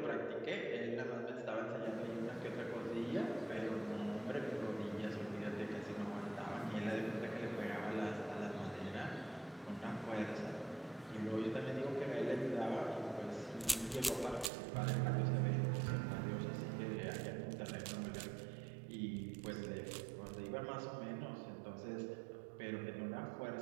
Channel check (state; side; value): drops out; left; at 14.5 s